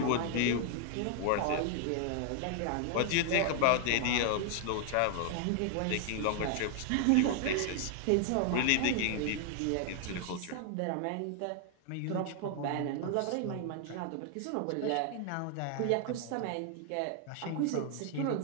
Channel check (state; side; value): different; both; correlation 0.00